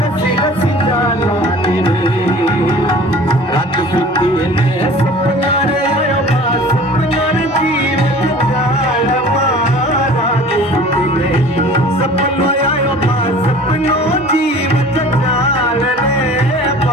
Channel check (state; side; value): normal; both; correlation 0.44